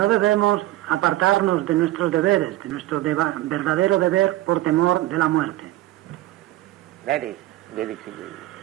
debemos apartarnos de nuestros deberes, de nuestro verdadero deber por temor de la muerte. That is Vedic civilization.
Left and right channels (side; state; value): left; quieter; 16.2 dB